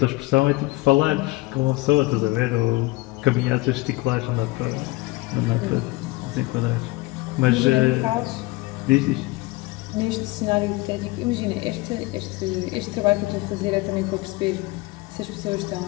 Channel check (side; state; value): right; quieter; 22.0 dB